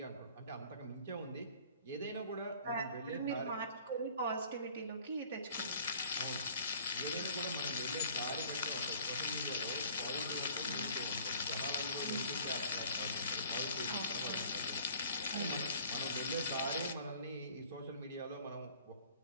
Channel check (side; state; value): both; inverted; correlation -0.50